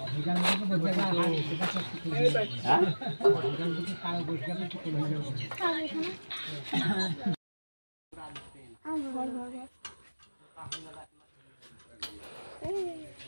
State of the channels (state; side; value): inverted; both; correlation -1.00